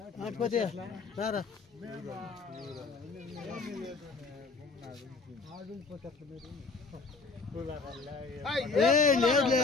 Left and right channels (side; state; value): right; quieter; 4.3 dB